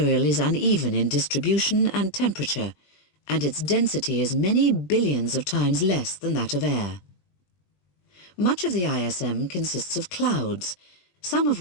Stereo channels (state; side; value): late; right; 20 ms